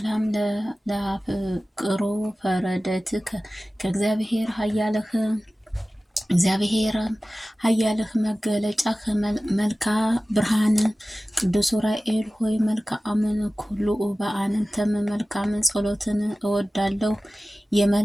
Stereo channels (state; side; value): normal; both; correlation 0.97